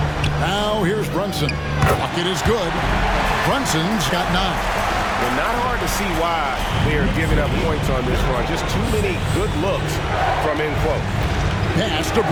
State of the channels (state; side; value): identical; both; correlation 1.00